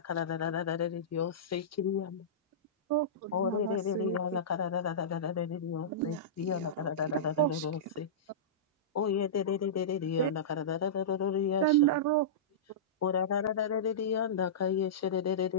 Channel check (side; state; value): both; normal; correlation -0.17